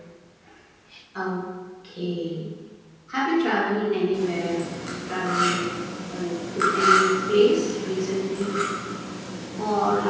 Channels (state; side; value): identical; both; correlation 1.00